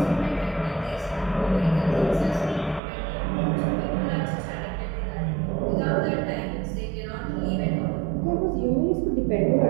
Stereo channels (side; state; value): left; drops out; at 2.8 s